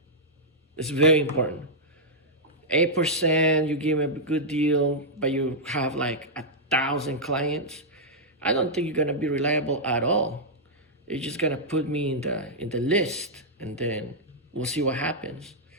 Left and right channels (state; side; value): normal; both; correlation -0.07